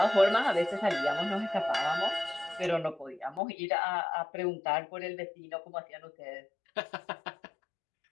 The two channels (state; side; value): drops out; right; at 3.4 s